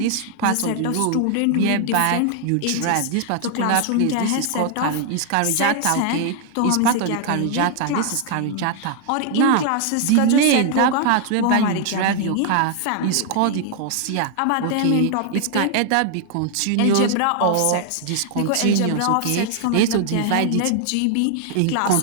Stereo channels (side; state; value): both; different; correlation 0.00